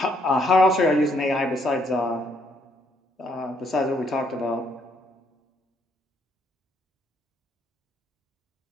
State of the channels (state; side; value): normal; both; correlation 0.70